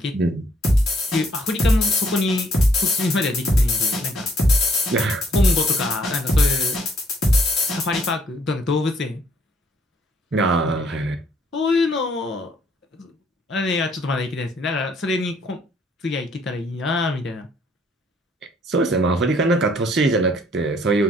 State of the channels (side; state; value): both; normal; correlation 0.66